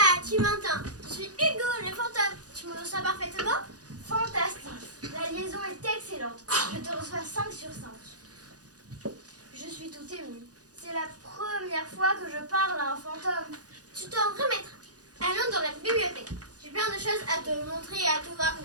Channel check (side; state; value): left; late; 0.68 ms